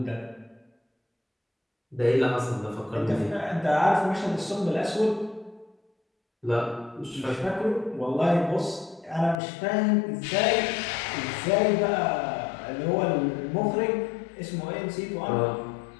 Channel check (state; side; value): drops out; right; at 9.4 s